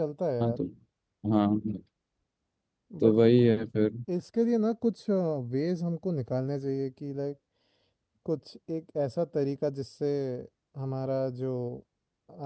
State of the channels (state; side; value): identical; both; correlation 1.00